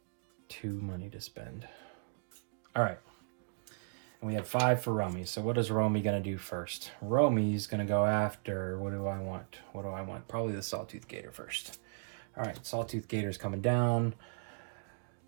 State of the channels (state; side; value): silent; left; digital silence